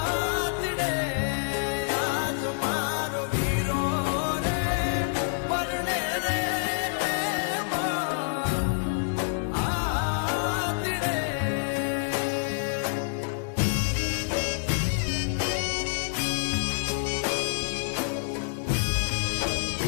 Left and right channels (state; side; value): silent; right; digital silence